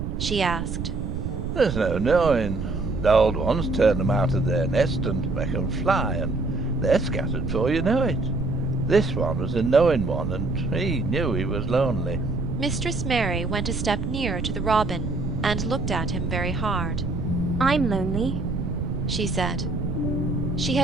She asked. There's no knowing. The old ones turn them out of their nest and make them fly, and they're scattered before you know it. This one was a knowing one, and he knew he was lonely. Mistress Mary went a step nearer to the robin and looked at him very hard. I'm lonely, she said. She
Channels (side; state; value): right; noise; rumble, 3 dB below the sound